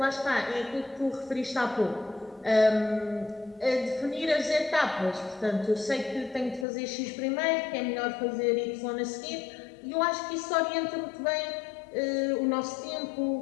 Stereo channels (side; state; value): right; drops out; at 6.7 s